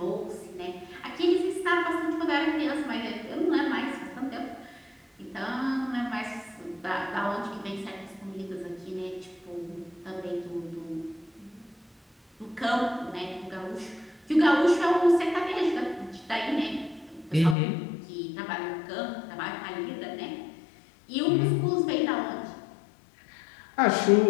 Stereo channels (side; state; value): right; drops out; at 17.6 s